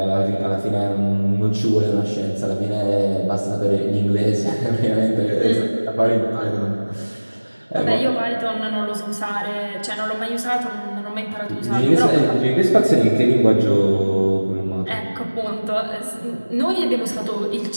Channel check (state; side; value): inverted; both; correlation -1.00